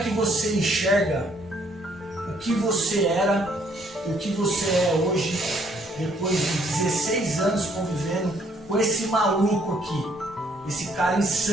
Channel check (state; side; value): normal; both; correlation 0.66